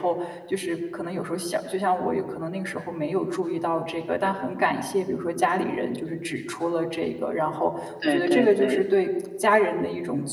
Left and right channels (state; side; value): identical; both; correlation 1.00